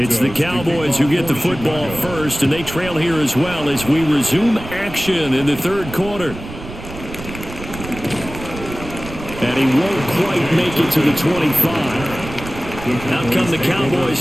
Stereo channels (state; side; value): noise; right; rumble, 12 dB below the sound